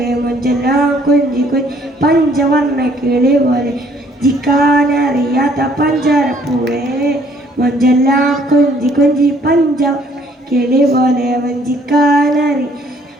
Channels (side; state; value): both; normal; correlation 0.62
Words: മുഞ്ചെല്ലാം കുഞ്ചി കുഞ്ചി പഞ്ചവർണ്ണ കിളി പോലെ ജിക്കാനറിയാത്ത പഞ്ചാരപ്പൂവേ മഞ്ചെല്ലാം കുഞ്ചി കുഞ്ചി പഞ്ച കിളി പോലെ വഞ്ചിക്കാനറി